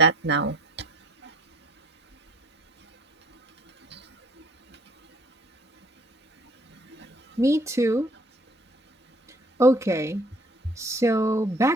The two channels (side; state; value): both; normal; correlation 0.56